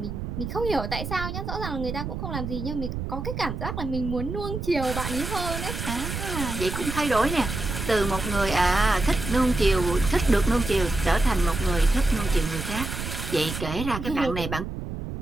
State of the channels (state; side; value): noise; right; rumble, 5 dB below the sound